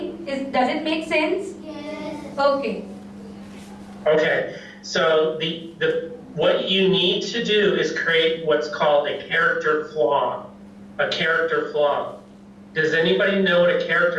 does it make sense? Yes. Okay. Okay, so what you need to do is create what's called a character flaw. A character flaw. Does anybody know what a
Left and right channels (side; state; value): both; identical; correlation 1.00